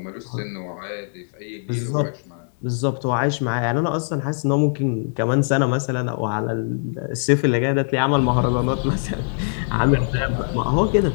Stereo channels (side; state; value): right; silent; digital silence